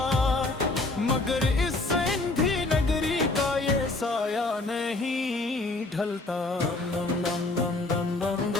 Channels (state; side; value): quieter; right; 3.0 dB